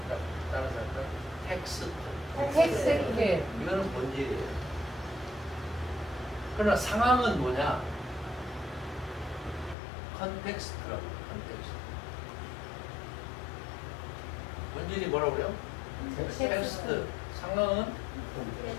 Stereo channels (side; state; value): right; drops out; at 9.8 s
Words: 따라서 할까요? 텍스트. 텍스트. 이거는 본질이에요. 그러나 상황은 뭐냐? 컨텍스트라고 해요. 컨텍스트. 본질이 뭐라고 그래요? 텍스트. 상황은